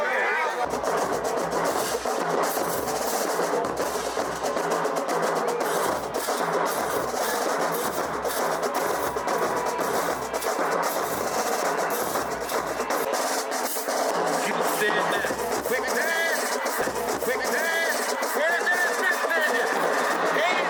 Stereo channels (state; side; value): identical; both; correlation 1.00